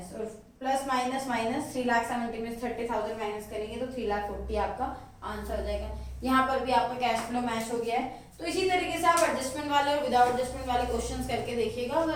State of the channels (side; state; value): both; identical; correlation 1.00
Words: और प्लस माइनस माइनस 3,70,000 में 30,000 माइनस करेंगे तो 3,40,000 आपका आंसर हो जाएगा। यहाँ पर भी आपका कैश फ्लो मैच हो गया है। तो इसी तरीके से आप एडजस्टमेंट वाले और विदाउट एडजस्टमेंट वाले क्वेश्चंस करके देखिएगा।